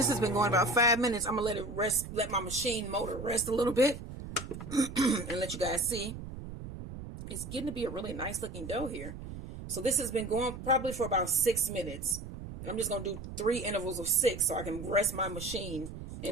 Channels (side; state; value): right; noise; rumble, 10 dB below the sound